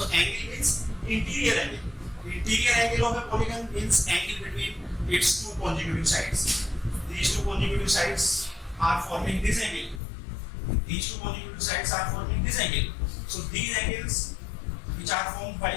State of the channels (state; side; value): drops out; right; at 10.0 s